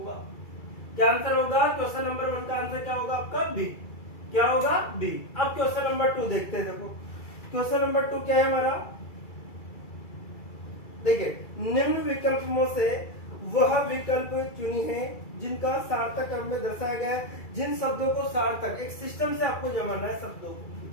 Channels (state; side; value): late; right; 2.3 ms